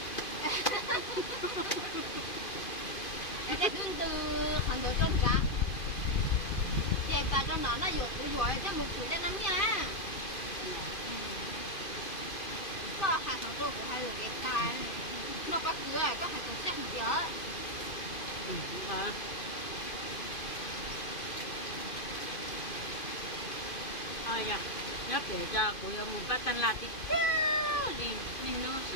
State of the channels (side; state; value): right; late; 2.5 ms